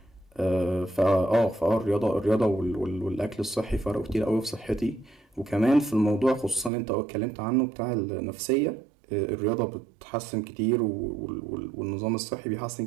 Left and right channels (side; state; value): left; drops out; at 6.7 s